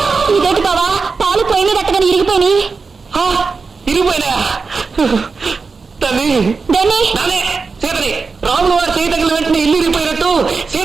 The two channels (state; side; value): quieter; left; 4.6 dB